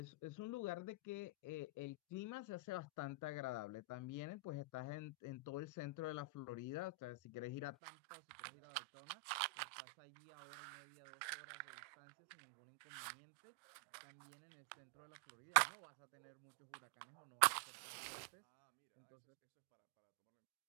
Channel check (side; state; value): left; drops out; at 7.8 s